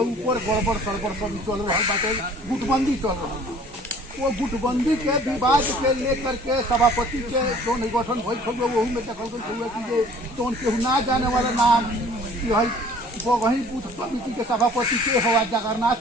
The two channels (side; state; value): both; normal; correlation 0.52